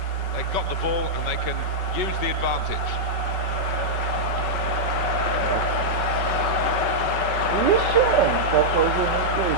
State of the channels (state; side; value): late; right; 5.3 ms